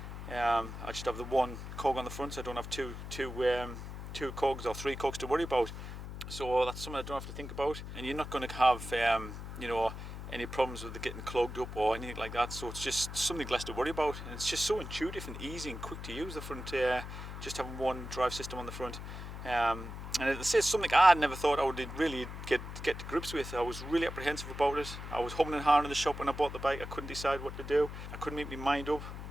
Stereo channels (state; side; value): noise; left; hum, 9 dB below the sound